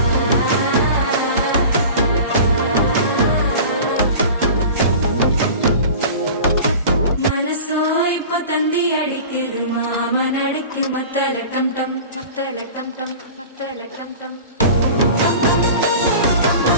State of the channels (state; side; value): inverted; both; correlation -0.38